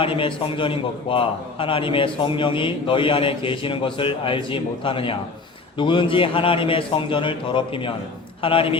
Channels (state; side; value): quieter; right; 3.9 dB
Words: 성전인 것과 하나님의 성령이 너희 안에 계시는 것을 알지 못하느냐. 누구든지 하나님의 성전을 더럽히면